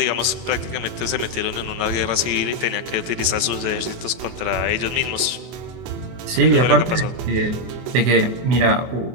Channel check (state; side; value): late; left; 23 ms